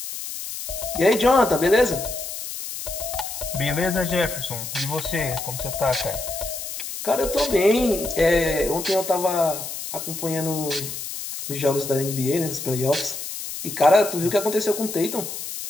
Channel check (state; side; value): noise; left; hiss, 7 dB below the sound